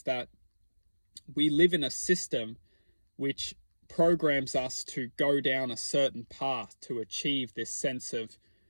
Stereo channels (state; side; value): inverted; both; correlation -1.00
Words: that we live in a system which programs us to go down a certain path to achieve this sense of